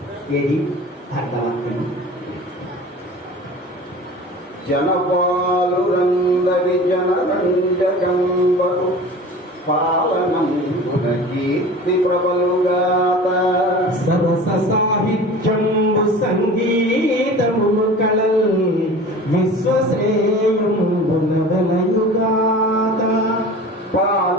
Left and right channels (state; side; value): normal; both; correlation 0.39